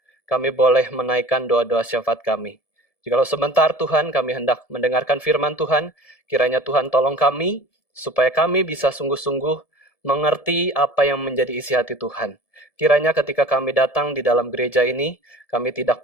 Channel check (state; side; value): late; right; 1.7 ms